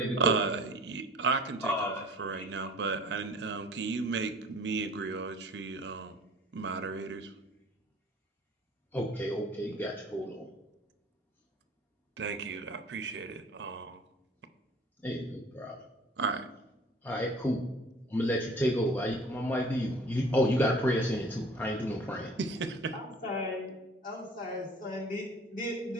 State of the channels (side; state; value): both; normal; correlation 0.48